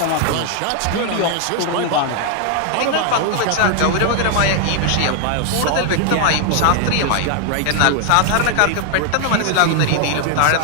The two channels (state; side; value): different; both; correlation 0.00